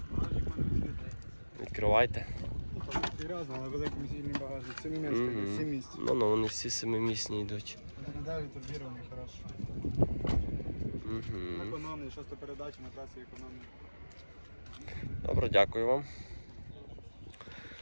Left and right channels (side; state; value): both; inverted; correlation -1.00